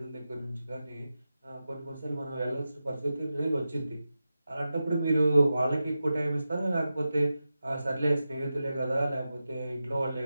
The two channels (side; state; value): both; inverted; correlation -0.92